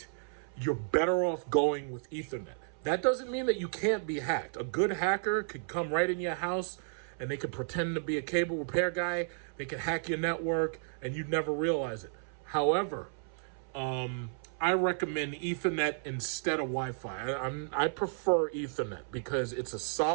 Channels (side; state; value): left; silent; 56 dB below the other